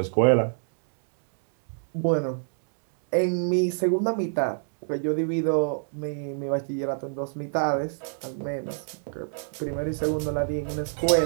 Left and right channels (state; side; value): silent; left; 61 dB below the other